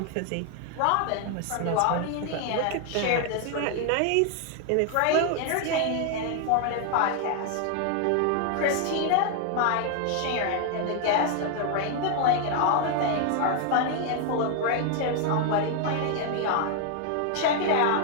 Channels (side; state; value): both; different; correlation 0.00